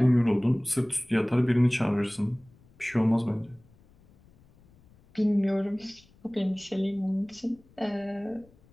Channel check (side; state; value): left; noise; rumble, 29 dB below the sound